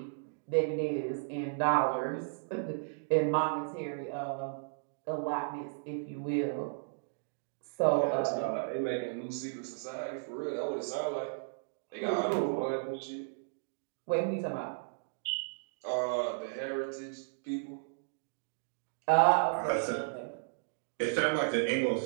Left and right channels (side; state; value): left; silent; digital silence